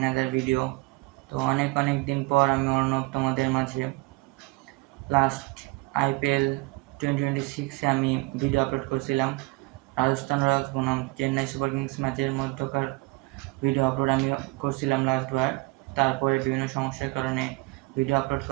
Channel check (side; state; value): left; quieter; 24.3 dB